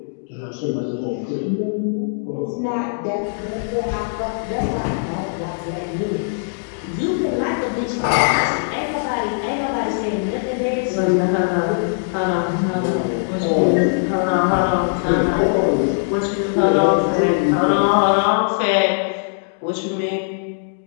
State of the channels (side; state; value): right; silent; digital silence